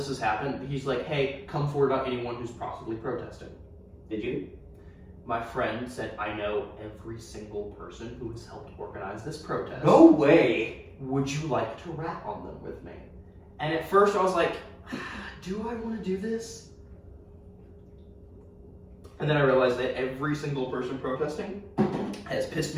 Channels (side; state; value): both; identical; correlation 1.00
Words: has happened, he's like, hey, come forward about anyone who's possibly protesting. Did you? My friend said, I know every single person who has helped organize this protest. No way. Would you like to rat on them with me? And at first I was like, do I want to do this? And then I realized that every single person protesting has pissed